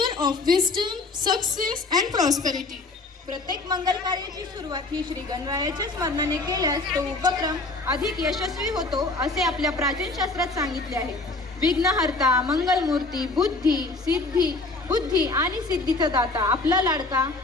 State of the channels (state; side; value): quieter; right; 3.3 dB